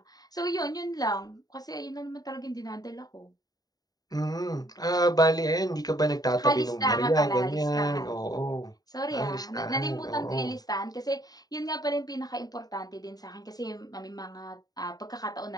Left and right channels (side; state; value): right; late; 0.18 ms